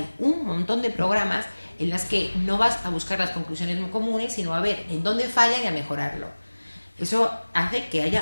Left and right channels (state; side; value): inverted; both; correlation -1.00